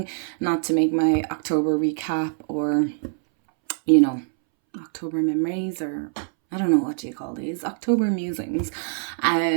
not to make my October recap or, October memories, or I don't know what do you call these, October musings.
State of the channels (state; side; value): silent; left; 63 dB below the other